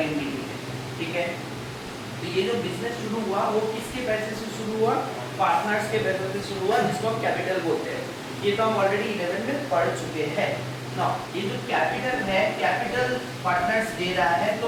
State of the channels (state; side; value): identical; both; correlation 1.00